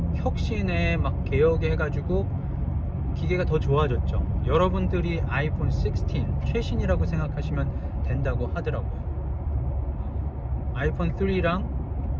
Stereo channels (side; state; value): both; identical; correlation 1.00